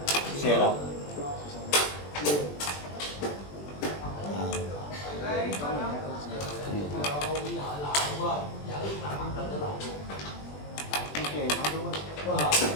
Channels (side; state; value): right; late; 20 ms